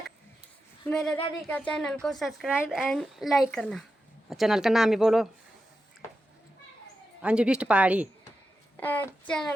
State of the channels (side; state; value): both; normal; correlation 0.90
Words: मेरे दादी का चैनल को सब्सक्राइब एंड लाइक करना। चैनल का नाम ही बोलो, अंजू बिष्ट पहाड़ी।